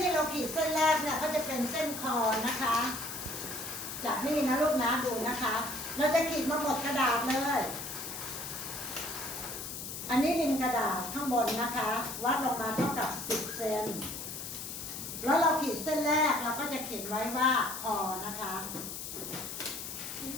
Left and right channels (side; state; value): left; noise; hiss, 7 dB below the sound